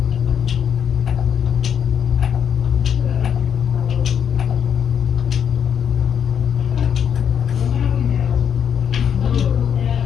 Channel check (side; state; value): right; quieter; 8.1 dB